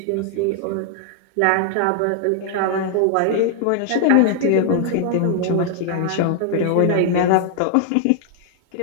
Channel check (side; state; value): both; different; correlation 0.00